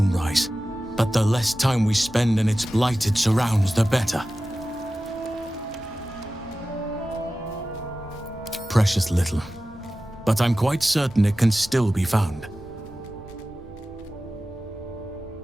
but the less time we spend in its blighted surrounds, the better. Precious little, but I'm quite certain it can still be found.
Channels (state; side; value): normal; both; correlation 0.95